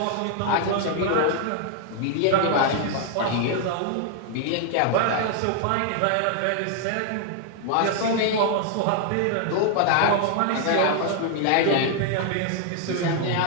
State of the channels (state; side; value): different; both; correlation 0.00